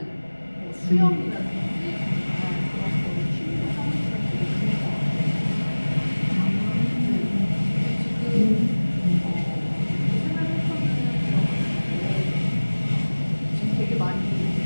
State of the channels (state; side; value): inverted; both; correlation -1.00